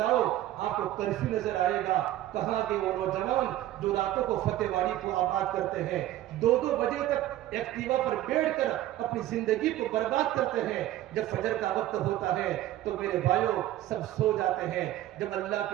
آپ کو کرفیو نظر آئے گا۔ کہاں کے وہ نوجوان جو راتوں کو فتح وادی کو آباد کرتے ہیں، 2 بجے تک ایکٹیوا پر بیٹھ کر اپنی زندگی کو برباد کرتے ہیں، جب فجر کا وقت ہوتا ہے تو میرے بھائیوں سب سو جاتے ہیں۔ جب اللہ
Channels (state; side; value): quieter; left; 14.2 dB